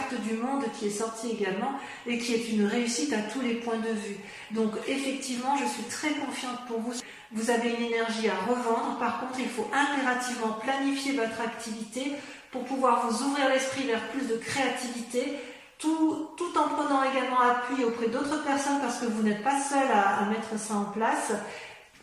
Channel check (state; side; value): identical; both; correlation 1.00